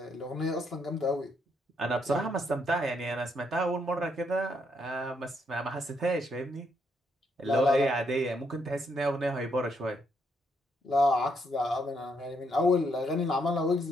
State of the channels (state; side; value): normal; both; correlation 0.75